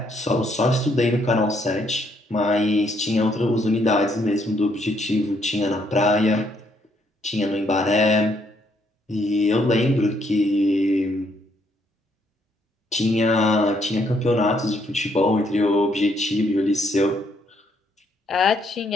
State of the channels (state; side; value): normal; both; correlation 0.71